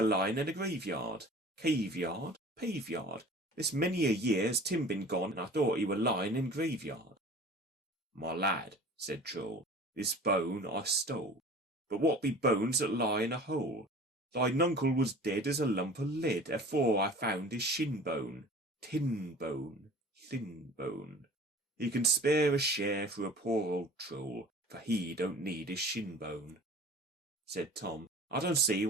line in a graveyard. Caveyard, paveyard. This many a year has Tim been gone, and I thought he were lying in graveyard." "My lad," said Troll, "this bone I stole. But what be bones that lie in a hole? Thine uncle was dead as a lump of lead, afore I found his shin bone. Tin bone, thin bone. He can spare a share for a poor old troll, for he don't need his shin bone." Said Tom, "I don't see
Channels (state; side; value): normal; both; correlation 0.43